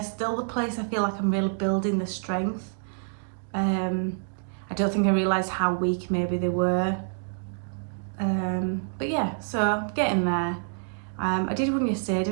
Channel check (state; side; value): silent; left; digital silence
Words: still the place I feel like I'm really building the strength. I don't think I realised how weak maybe they were. But yeah, so getting there. I did one yesterday. I